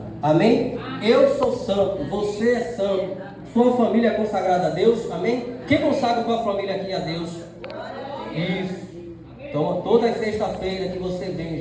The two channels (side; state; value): both; identical; correlation 1.00